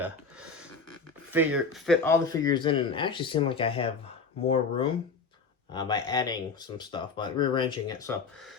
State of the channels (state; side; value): quieter; right; 4.6 dB